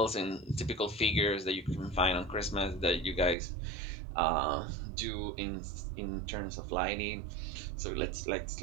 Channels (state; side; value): drops out; left; at 3.4 s